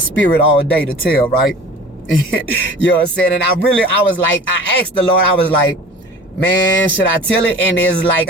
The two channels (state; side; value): normal; both; correlation 0.42